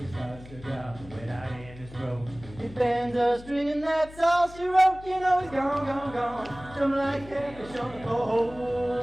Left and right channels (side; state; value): left; noise; hum, 18 dB below the sound